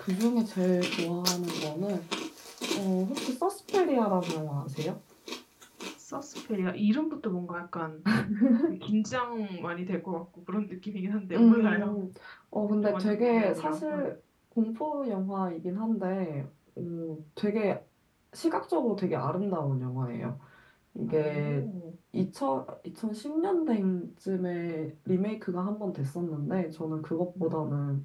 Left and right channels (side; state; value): both; identical; correlation 1.00